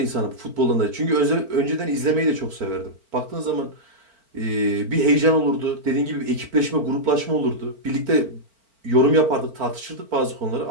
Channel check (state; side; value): late; left; 4.4 ms